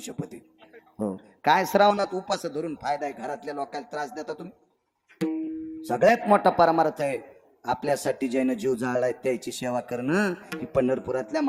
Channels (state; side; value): identical; both; correlation 1.00